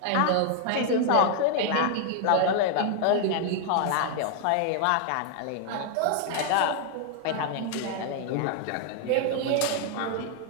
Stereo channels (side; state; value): both; different; correlation 0.00